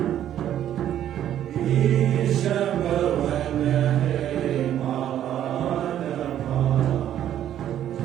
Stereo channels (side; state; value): left; quieter; 11.1 dB